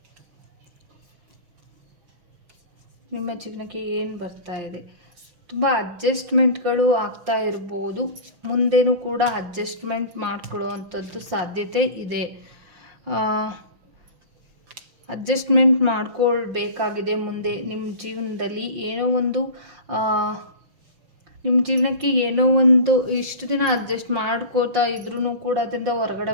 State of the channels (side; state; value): left; late; 5.6 ms